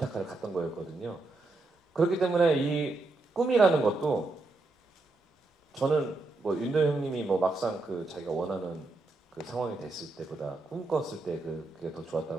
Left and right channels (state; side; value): quieter; left; 3.2 dB